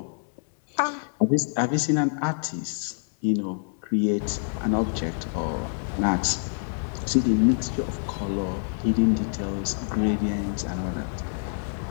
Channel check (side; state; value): right; silent; digital silence